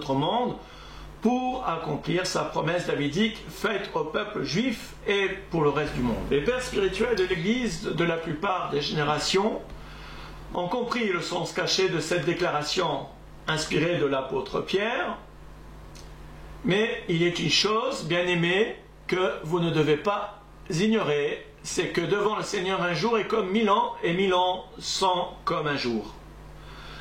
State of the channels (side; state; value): both; identical; correlation 1.00